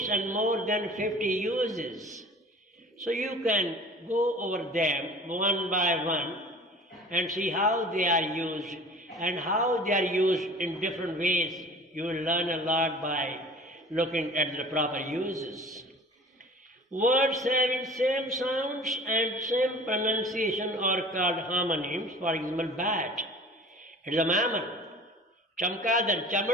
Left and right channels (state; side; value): normal; both; correlation 0.44